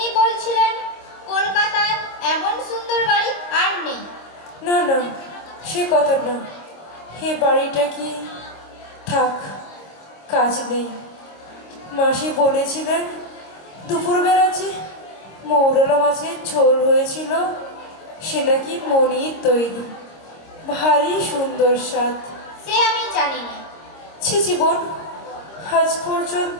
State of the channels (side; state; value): right; late; 26 ms